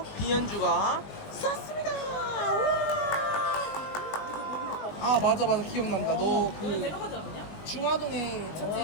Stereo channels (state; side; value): late; right; 20 ms